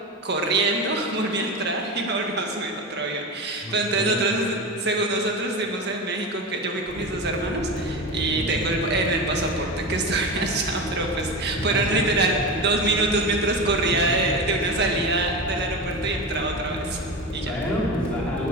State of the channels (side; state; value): both; normal; correlation 0.24